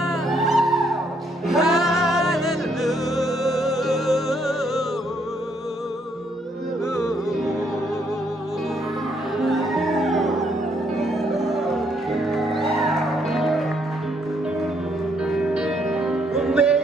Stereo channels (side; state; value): both; normal; correlation 0.71